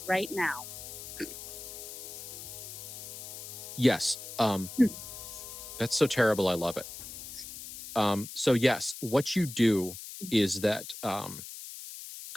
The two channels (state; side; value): noise; left; hiss, 11 dB below the sound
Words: right now. Yes. That's so terrible. I love it. So yes, what you do is that